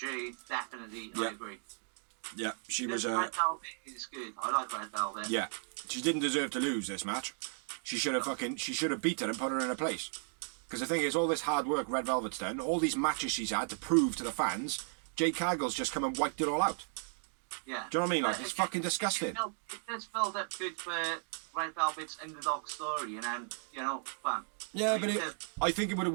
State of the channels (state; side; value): silent; left; 54 dB below the other